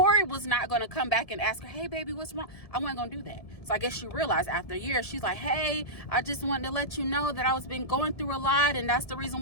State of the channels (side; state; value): right; late; 1.7 ms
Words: was not going to come back and ask her, hey baby, what's wrong? I wasn't going to do that. So I guess she realized after a year, she's like, hey, I just wanted to let you know that I was been going through a lot, and that's the reason